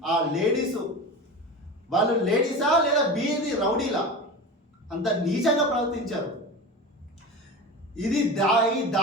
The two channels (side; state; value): both; normal; correlation 0.29